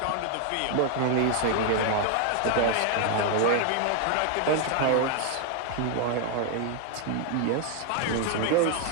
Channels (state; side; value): different; both; correlation 0.00